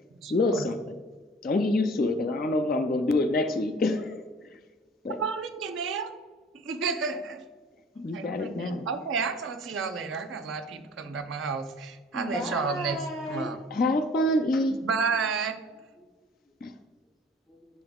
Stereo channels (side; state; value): both; normal; correlation 0.48